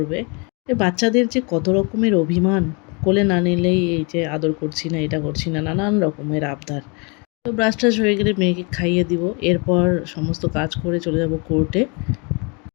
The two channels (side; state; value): right; quieter; 32.1 dB